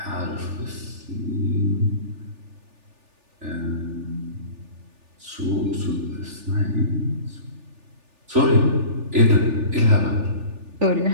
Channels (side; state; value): left; late; 3.4 ms